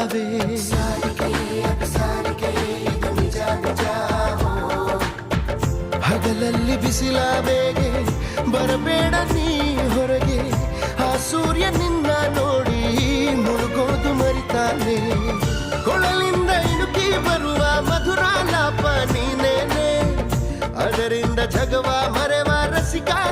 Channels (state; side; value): identical; both; correlation 1.00